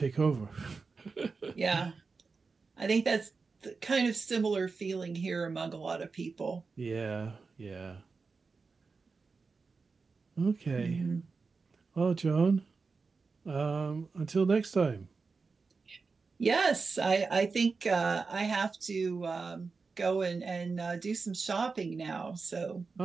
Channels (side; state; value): left; quieter; 4.5 dB